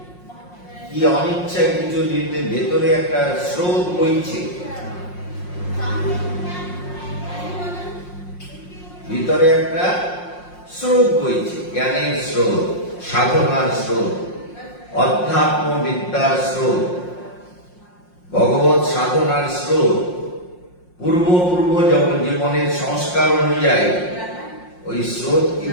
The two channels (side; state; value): right; late; 5.6 ms